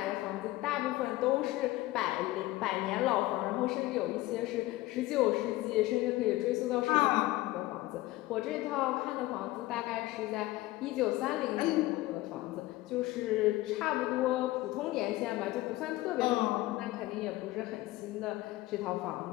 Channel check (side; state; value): right; quieter; 18.0 dB